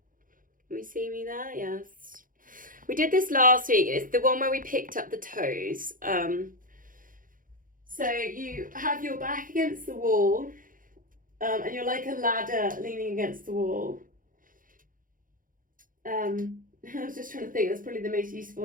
Can we see me there? Yes. We did this last week. It's the one where we picked up the toes. So you have your back against the wall, and you're like a ladder leaning against the wall. I was just trying to think, that's probably the most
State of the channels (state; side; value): late; left; 0.40 ms